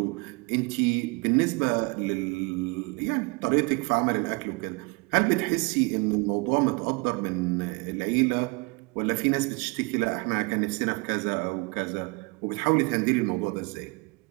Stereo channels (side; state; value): left; quieter; 29.3 dB